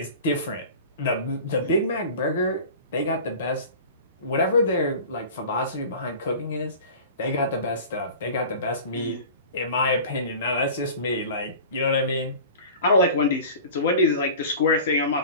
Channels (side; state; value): both; inverted; correlation -0.38